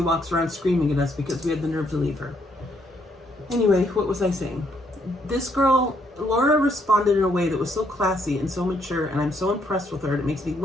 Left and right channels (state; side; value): normal; both; correlation 0.72